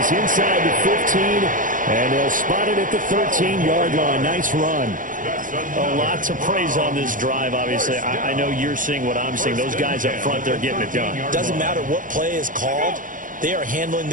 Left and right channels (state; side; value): late; left; 0.38 ms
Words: inside the 15, and they'll spot it at the 13-yard line. Nice run. A lot to praise on this drive, obviously. I know you're seeing what I'm seeing. Those guys up front, they're getting it done. Doesn't matter what play is called. They are handling